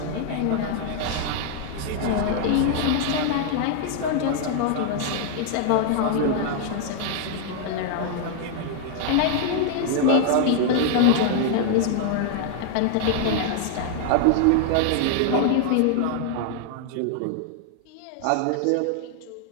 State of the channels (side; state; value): both; different; correlation 0.00